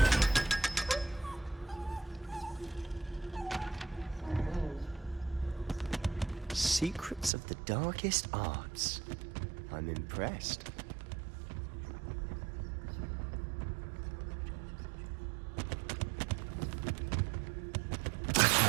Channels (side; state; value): left; drops out; at 7.3 s